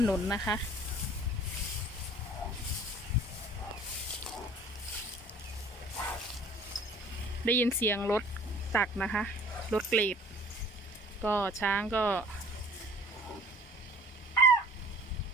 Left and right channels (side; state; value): both; normal; correlation 0.49